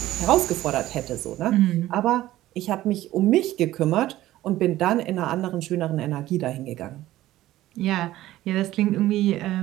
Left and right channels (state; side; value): quieter; left; 15.1 dB